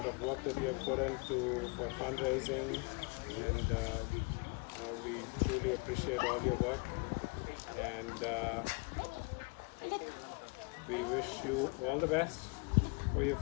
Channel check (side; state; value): right; quieter; 31.8 dB